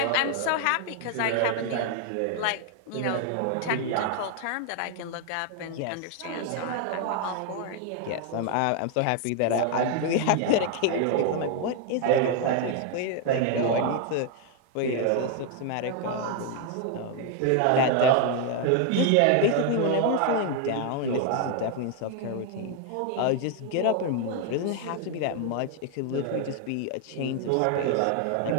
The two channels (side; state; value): both; different; correlation 0.00